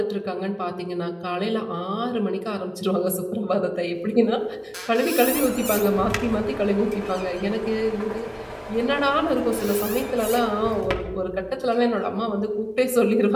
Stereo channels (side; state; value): both; identical; correlation 1.00